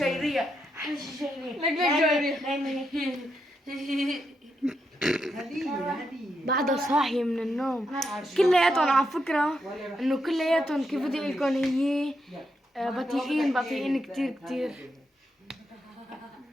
احلى شي شيرية. لك جاية. هدية. بعدها صاحية من النوم. كلياتهم على فكرة انه كلياتهم كيف بدي اقول لكم هي بطيئين كتير.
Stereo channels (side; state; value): both; normal; correlation 0.82